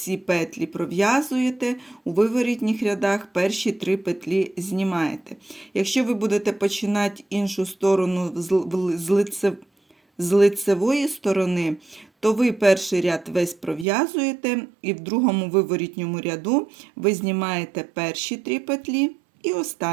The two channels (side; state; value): left; drops out; at 13.9 s